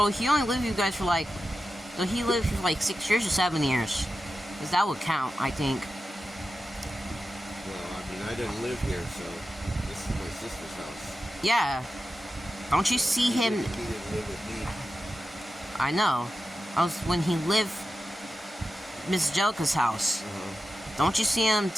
you guys for like, so he lived for like 6 years or 7 years. Because that would count, I think. Well, I mean, I didn't live here, so this is my sister's house. Yeah. Don't you see him? He didn't live with me. I know. When he lived Miss Jelka's house. Don't you see him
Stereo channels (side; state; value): both; normal; correlation 0.92